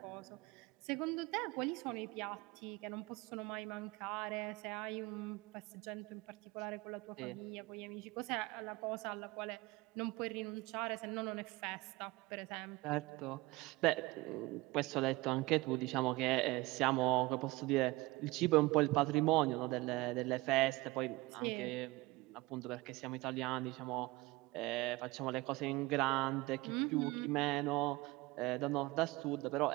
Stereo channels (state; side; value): quieter; left; 21.8 dB